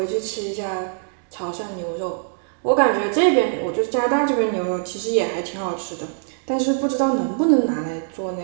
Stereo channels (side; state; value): left; silent; 64 dB below the other